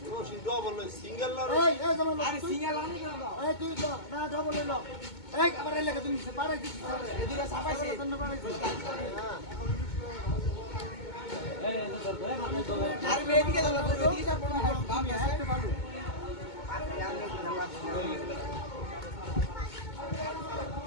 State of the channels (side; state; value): right; late; 2.2 ms